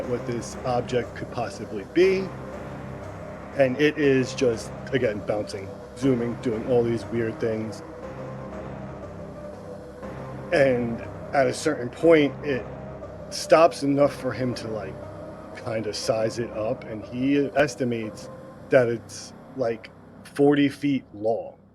what this object could possibly be, and it is just, again, bouncing, zooming, doing all these weird things. And at a certain point, it stops enough for him to like kind of size it up, and he estimates that it's like 40 feet long.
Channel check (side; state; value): both; identical; correlation 1.00